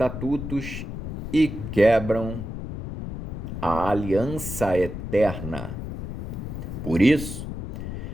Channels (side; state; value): left; noise; rumble, 6 dB below the sound